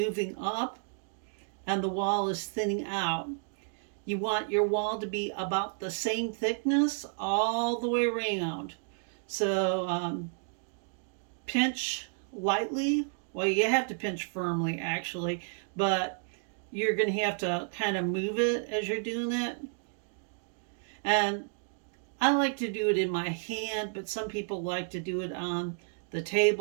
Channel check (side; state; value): left; silent; 57 dB below the other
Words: up and the wall is thinning out. You want your wall to be about the same thickness all the way around. So pinch lightly. Well, you have to pinch firmly actually, but you're going to have to kind of move it as you're doing it. And I like to do it in my hand, but some people like to do it on the